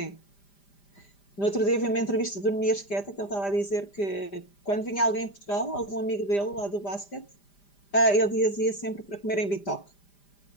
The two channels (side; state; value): right; late; 5.0 ms